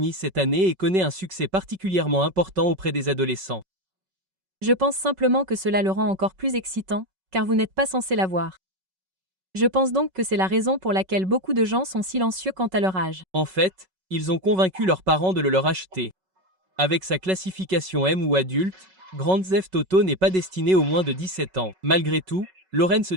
cette année et connaît un succès particulièrement important auprès des adolescents. Je pense simplement que cela le rend encore plus excitant, car vous n'êtes pas censé l'avoir. Je pense donc que c'est la raison pour laquelle beaucoup de gens sont silencieux quant à leur âge. En fait, ils ont convaincu leurs parents de le leur acheter. Avec sa classification M ou adulte, Grand Theft Auto n'est pas destiné aux moins de 17 ans. Malgré tout, Lawrence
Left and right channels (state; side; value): late; left; 5.3 ms